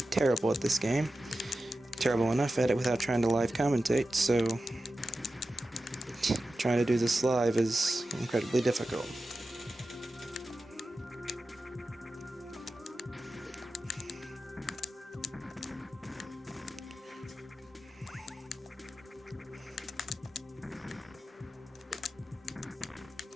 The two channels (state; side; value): normal; both; correlation 0.93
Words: at this game. Terrible enough at it without trying to live commentate, so trying to do this live is incredibly difficult.